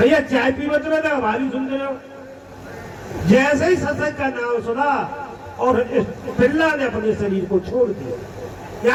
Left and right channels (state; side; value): identical; both; correlation 1.00